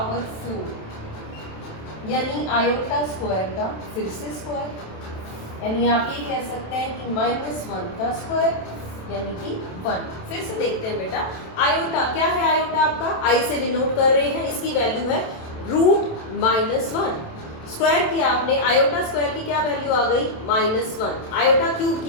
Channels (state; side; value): late; right; 27 ms